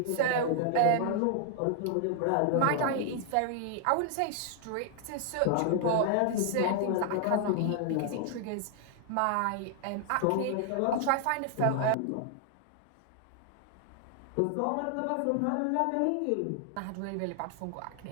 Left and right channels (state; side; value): different; both; correlation 0.00